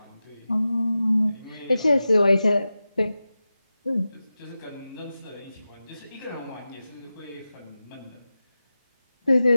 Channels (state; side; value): inverted; both; correlation -0.94